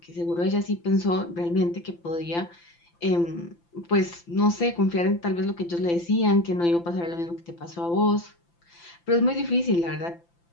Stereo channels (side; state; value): right; late; 5.9 ms